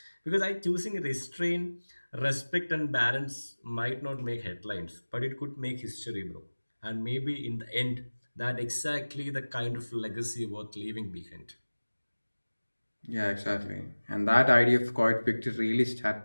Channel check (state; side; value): inverted; both; correlation -1.00